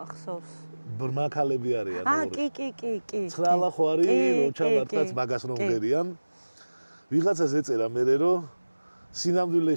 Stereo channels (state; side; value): inverted; both; correlation -1.00